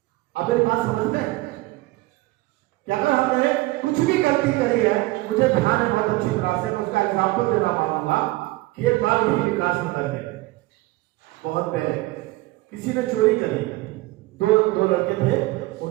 आप मेरी बात समझते हैं कि अगर हमने कुछ भी गलती करी है, मुझे ध्यान है बहुत अच्छी तरह से, मैं उसका एग्जाम्पल देना पाऊंगा कि एक बार भी विकास नगर में बहुत पहले किसी ने चोरी करी, दो लड़के थे,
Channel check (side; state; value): left; quieter; 20.1 dB